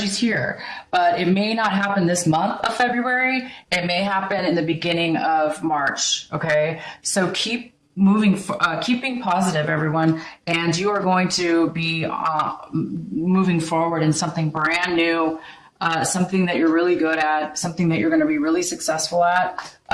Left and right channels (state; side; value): identical; both; correlation 1.00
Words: here, but it may not happen this month of February. It may happen in the beginning of March. Okay, so keep keeping positive, everyone, and you are going to be moving forward in something brand new, something that you're really good at, something that you're going to be really successful at,